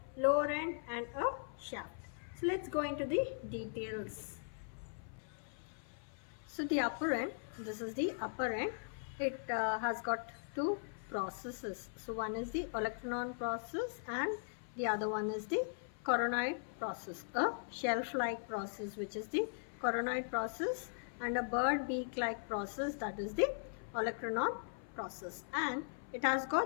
lower end and a shaft. So let's go into the details. So the upper end, this is the upper end. It has got two processes. So one is the olecranon process and the other one is the coronoid process, a shelf-like process which is the coronoid process, and a bird beak-like process, that is the olecranon process, and it has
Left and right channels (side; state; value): right; silent; 52 dB below the other